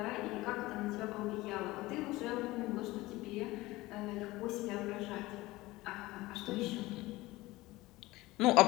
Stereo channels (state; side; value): quieter; right; 19.4 dB